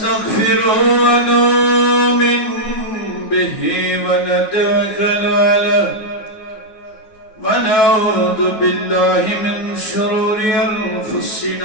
ونؤمن به ونتوكل عليه ونعوذ بالله من شرور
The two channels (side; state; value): right; late; 9.4 ms